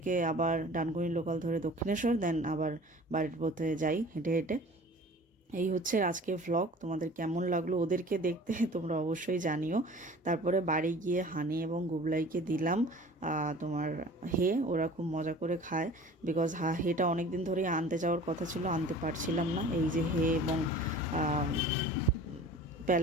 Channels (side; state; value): both; normal; correlation 0.44